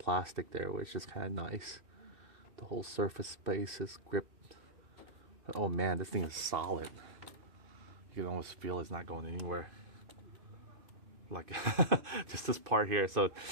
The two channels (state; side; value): late; left; 2.5 ms